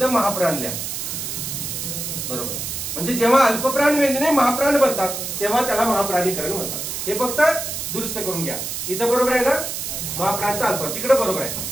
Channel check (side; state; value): right; noise; hiss, 5 dB below the sound